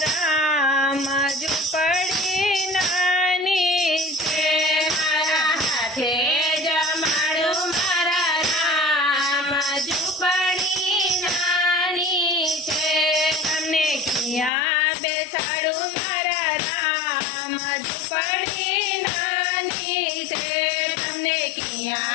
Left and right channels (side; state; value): right; drops out; at 14.5 s